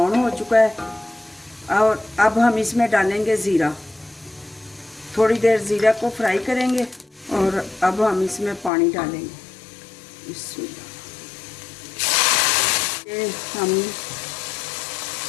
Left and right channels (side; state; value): right; drops out; at 8.7 s